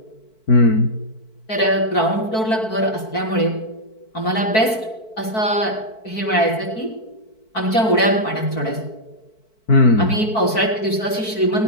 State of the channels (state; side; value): late; right; 4.6 ms